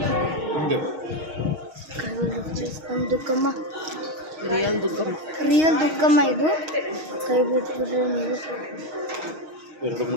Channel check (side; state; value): left; late; 6.4 ms